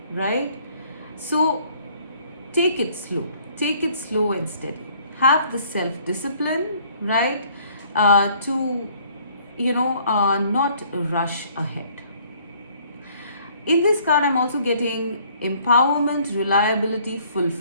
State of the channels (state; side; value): inverted; both; correlation -0.60